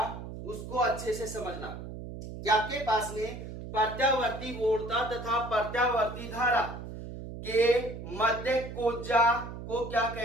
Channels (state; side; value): noise; right; hum, 10 dB below the sound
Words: उसको अच्छे से समझना कि आपके पास में प्रत्यावर्ती वोल्टता तथा प्रत्यावर्ती धारा के मध्य कोज्जा को क्या